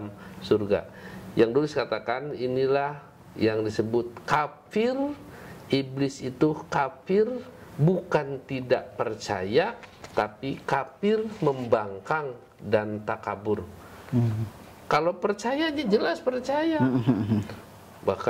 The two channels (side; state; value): both; identical; correlation 1.00